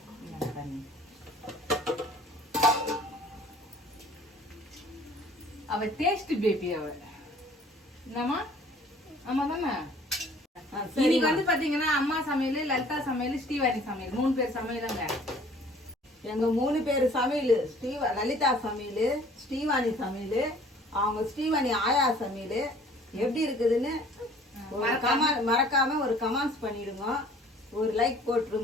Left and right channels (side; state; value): both; normal; correlation 0.53